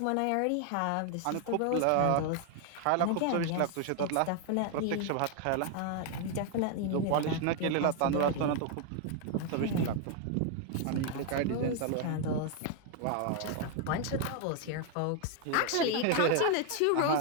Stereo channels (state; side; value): different; both; correlation 0.01